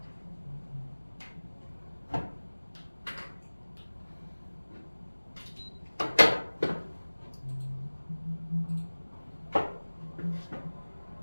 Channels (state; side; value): inverted; both; correlation -1.00